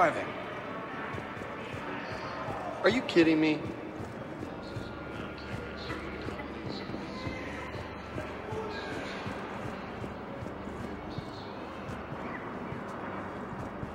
Are you kidding me?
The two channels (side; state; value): both; identical; correlation 1.00